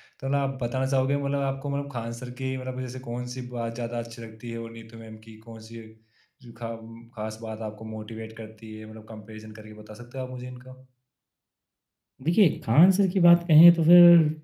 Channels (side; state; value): both; identical; correlation 1.00